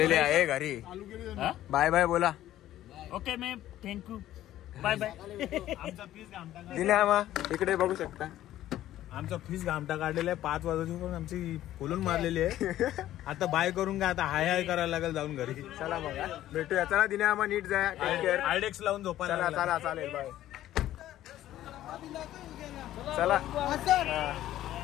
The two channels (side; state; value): right; quieter; 13.4 dB